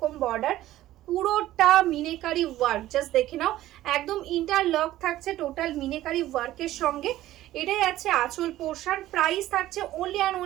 বর্ডার, পুরোটা মিনেকারি ওয়ার্ক, জাস্ট দেখে নাও একদম ইন্টারলক থাকছে টোটাল মিনেকারি ওয়ার্কের সঙ্গে। এটাই আছে আঁচল পোর্শন। প্রাইস থাকছে অনলি অ্যান্ড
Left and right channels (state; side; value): quieter; left; 14.7 dB